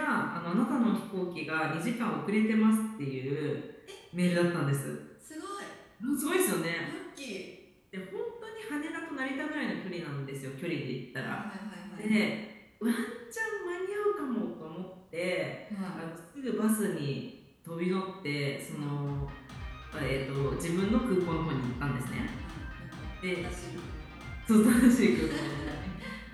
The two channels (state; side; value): identical; both; correlation 1.00